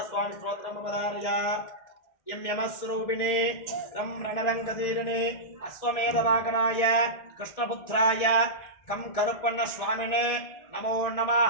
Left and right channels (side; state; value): right; late; 1.7 ms